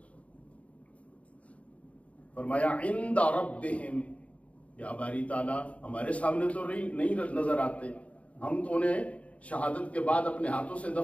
فرمایا عند ربہم, یا باری تعالیٰ ہمارے سامنے تو نہیں نظر آتے, ہم تو انہیں شہادت کے بعد اپنے ہاتھوں سے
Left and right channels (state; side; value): late; right; 0.066 ms